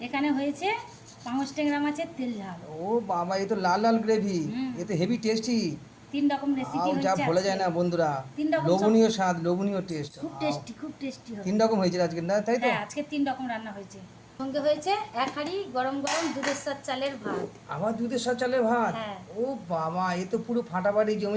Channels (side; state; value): both; identical; correlation 1.00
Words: এখানে হয়েছে পাঙস ট্যাংরা মাছের তেল ঝাল। ও বাবা, এ তো লাল লাল গ্রেভি। এ তো হেভি টেস্টি। 3 রকম রেসিপি যা হয়েছে। বলা যায় না বন্ধুরা। 3 রকম লোভনীয় স্বাদ, লোভনীয় টেস্ট। খুব টেস্টি হবে। 3 রকম হয়েছে আজকে, না তাই তো? হ্যাঁ, আজকে 3 রকম রান্না হয়েছে। সঙ্গে হয়েছে এক হাঁড়ি গরম গরম দুধের সাথে চালের ভাত। আবার দুধের সাথে চালের ভাত। হ্যাঁ। ও বাবা, এ তো পুরো ফাটাফাটি